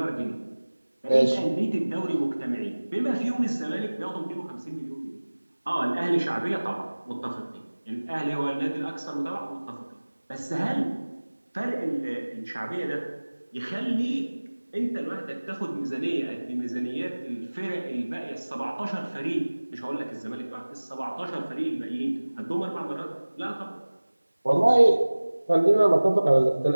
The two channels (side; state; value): both; inverted; correlation -1.00